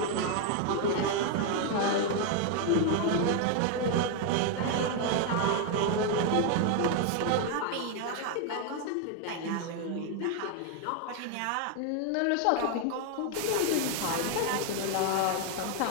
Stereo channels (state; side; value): different; both; correlation 0.01